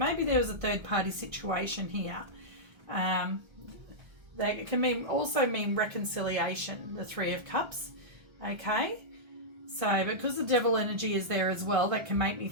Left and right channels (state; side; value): late; left; 1.3 ms